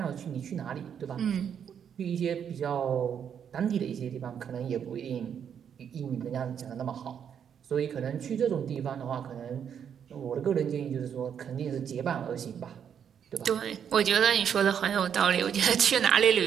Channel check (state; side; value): quieter; left; 8.2 dB